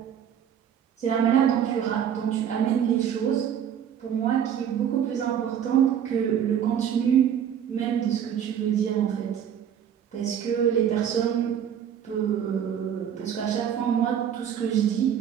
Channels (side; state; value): left; quieter; 9.0 dB